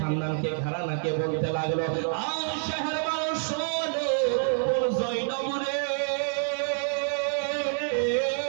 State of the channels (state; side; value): silent; left; 59 dB below the other